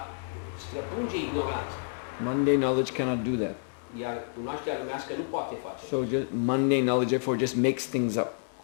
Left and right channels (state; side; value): silent; right; 58 dB below the other